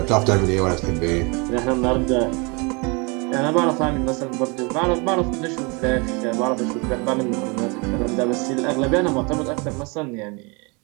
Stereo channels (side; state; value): left; quieter; 30.0 dB